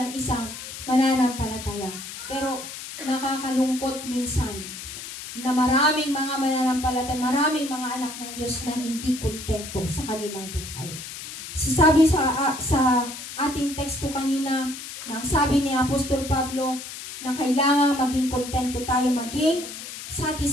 isang mananampalataya. Pero nakakalungkot minsan na maraming mga mananampalataya, maraming mga anak ng Diyos na hindi kontento sa kanilang buhay. So sabi sa ating teksto kanina, nang sabi ni Apostol Pablo na kailangan maging kontento tayo, maging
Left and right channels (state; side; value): noise; left; hiss, 10 dB below the sound